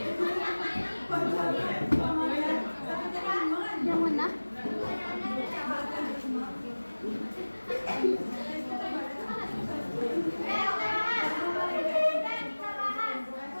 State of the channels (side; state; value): both; inverted; correlation -1.00